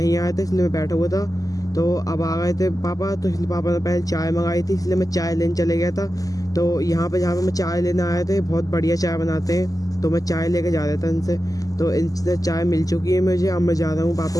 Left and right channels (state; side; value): late; right; 0.17 ms